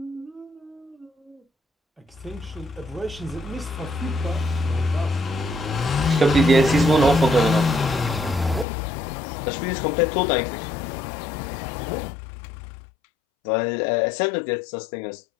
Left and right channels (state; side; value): drops out; right; at 8.7 s